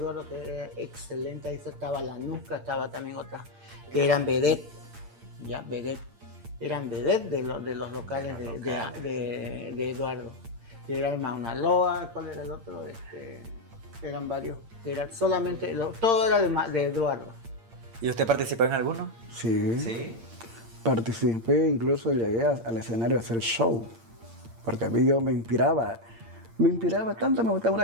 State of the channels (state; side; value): late; left; 8.7 ms